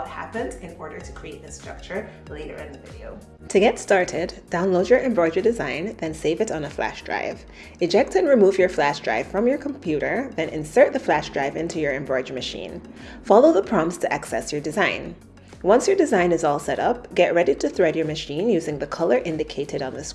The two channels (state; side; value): identical; both; correlation 1.00